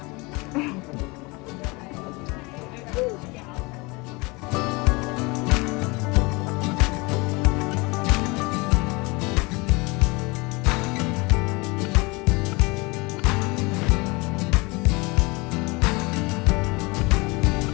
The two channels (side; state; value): right; quieter; 26.0 dB